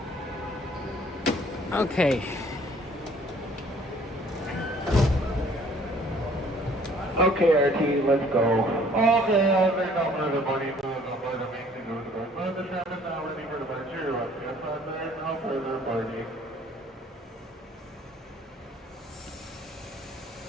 Okay. Okay, RT, let's go. Okay, there's no further money moving on board the main thing over the board. But the tram is now ready for departure. Yes, there's no further boarding.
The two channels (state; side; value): normal; both; correlation 0.57